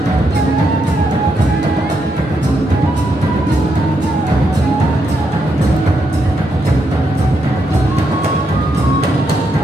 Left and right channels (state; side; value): normal; both; correlation 0.80